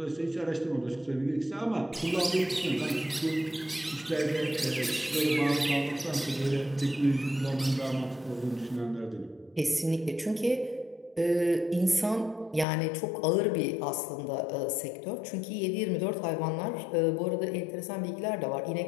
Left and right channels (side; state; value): right; drops out; at 12.7 s